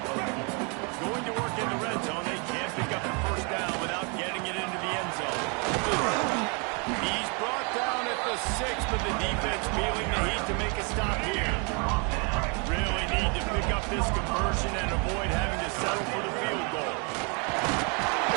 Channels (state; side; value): quieter; left; 34.2 dB